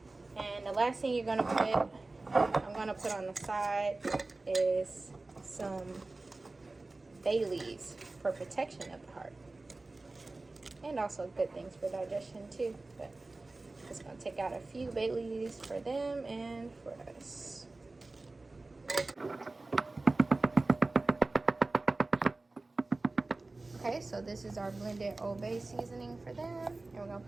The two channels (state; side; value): quieter; left; 3.2 dB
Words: And the last thing I'm gonna put on the side is some bay leaves for protection of the heart. And also good things for digestion too. But just gonna take out a few bay leaves for them and for us. Okay, so this is our blended Old Bay seasoning for them, and we're gonna